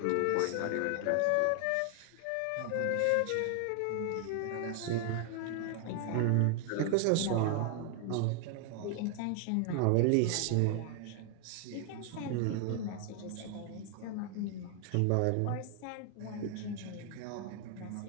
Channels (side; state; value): both; different; correlation 0.00